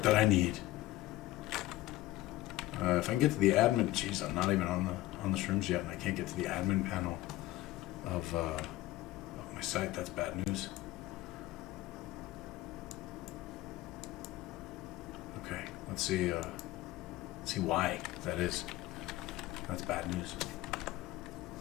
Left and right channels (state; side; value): quieter; right; 16.8 dB